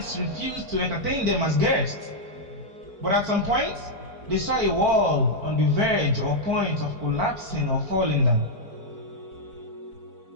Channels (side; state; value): left; late; 4.5 ms